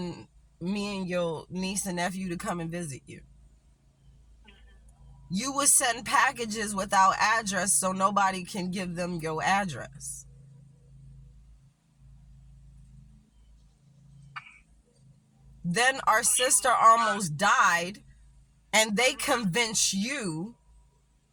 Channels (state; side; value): identical; both; correlation 1.00